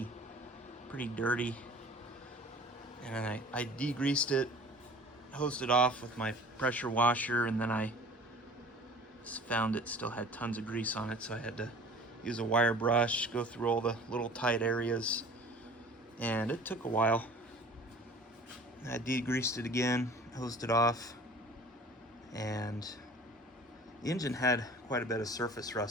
pretty dirty, and then I degreased it, hosed it off with my pressure washer, and then I found it still had tons of grease on it, so I had to use a wire brush, go through all the little tight areas, and it took a while. I degreased it again, hosed it off, and the engine had quite a bit of surface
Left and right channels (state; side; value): normal; both; correlation 0.45